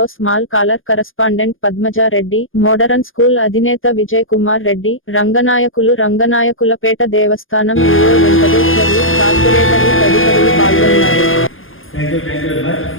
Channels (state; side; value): late; right; 0.59 ms